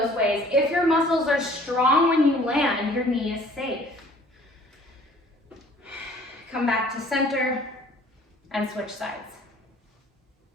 ways. If your muscles are strong when you land, your knee is safe. Come back to center and switch sides.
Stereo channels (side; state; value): both; normal; correlation 0.53